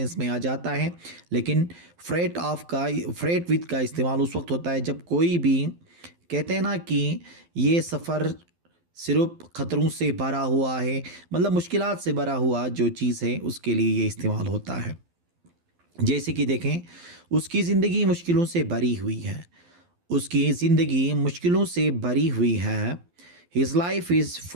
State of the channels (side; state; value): left; late; 12 ms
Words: में आ जाता है। लेकिन फ्रेट विथ का इस्तेमाल उस वक्त होता है जब कोई भी कहते हैं ना कि ये सफ़र सिर्फ ख़तरों से भरा हुआ है, मतलब मुश्किलात से भरा हुआ जो चीज़ है उसके लिए ये इस्तेमाल होता है। जैसे कि देखें, उसकी ज़िंदगी मुश्किलों से भरी हुई है। उसकी ज़िंदगी मुश्किलों से भरी हुई है। His life is